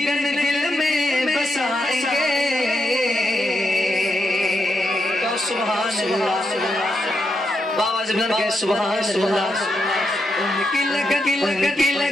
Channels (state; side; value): normal; both; correlation 0.83